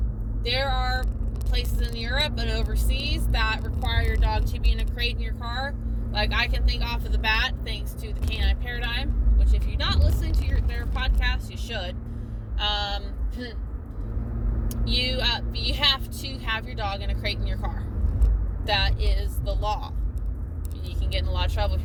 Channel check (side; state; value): both; identical; correlation 1.00